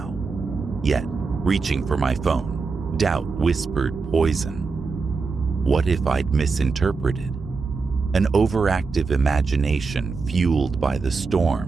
Yet, reaching for my phone, doubt whispered poison. What if I'd misinterpreted? An overactive imagination fueled by the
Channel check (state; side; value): quieter; left; 4.5 dB